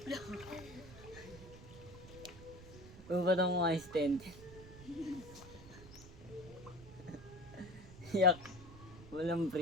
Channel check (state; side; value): noise; right; rumble, 16 dB below the sound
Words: Kung ba nang mga stand? Yak. Walang